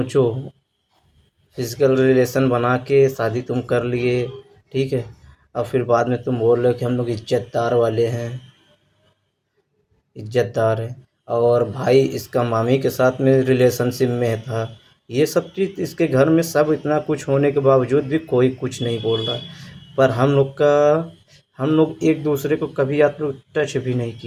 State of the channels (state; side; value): identical; both; correlation 1.00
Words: फिजिकल रिलेशन बना के शादी तुम कर लिए, ठीक है, और फिर बाद में तुम बोल रहे हो कि हम लोग इज्जतदार वाले हैं, इज्जतदार है, और भाई इसका मामी के साथ में रिलेशनशिप में था। ये सब चीज़ इसके घर में सब इतना कुछ होने के बावजूद भी कोई कुछ नहीं बोल रहा। पर हम लोग एक दूसरे को कभी आप लोग टच भी नहीं